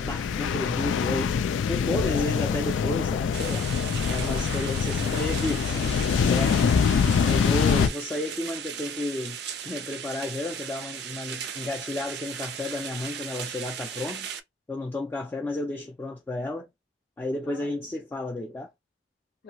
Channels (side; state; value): right; quieter; 4.1 dB